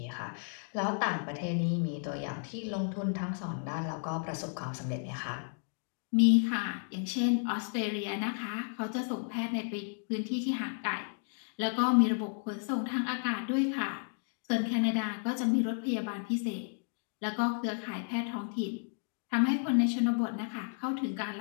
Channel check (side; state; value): right; silent; 56 dB below the other